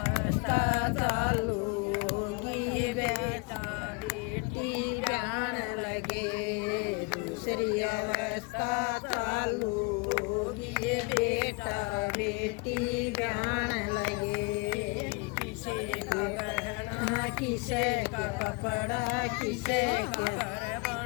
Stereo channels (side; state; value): right; quieter; 29.1 dB